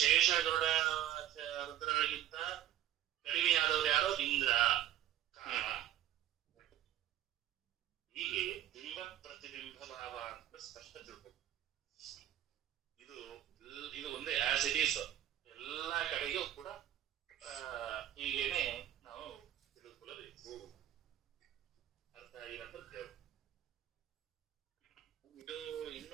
ರುದ್ರರಿಗಿಂತ ಕಡಿಮೆಯಾದವರು ಯಾರೋ ಇಂದ್ರ, ಕಾಮ. ಹೀಗೆ ಬಿಂಬ ಪ್ರತಿಬಿಂಬ ಭಾವ ಅಂತ ಸ್ಪಷ್ಟ ತಿಳ್ಬೇಕು. ಇದು ಒಂದೇ ಆಸ್ ಇಟ್ ಈಸ್ ಎಲ್ಲಾ ಕಡೆಗೂ ಕೂಡ ಹೀಗೇನೆ ನಾವು ತಿಳಿದುಕೊಳ್ಳಬೇಕು. ಅರ್ಥ ಆಗಿರಂತ ಹೇಳ್ಬೇಕು. ಇದು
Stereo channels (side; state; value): left; quieter; 12.2 dB